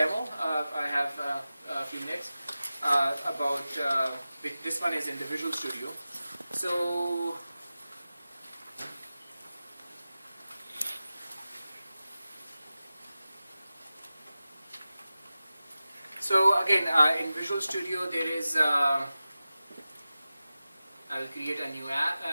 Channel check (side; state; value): both; inverted; correlation -0.95